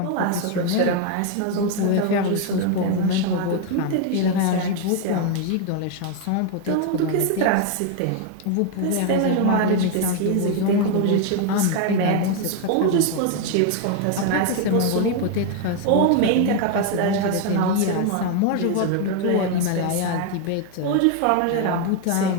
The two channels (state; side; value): different; both; correlation 0.01